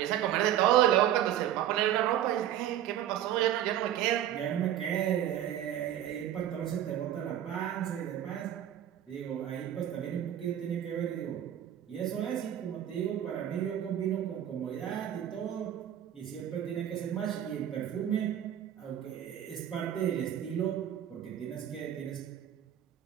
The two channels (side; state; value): left; quieter; 11.0 dB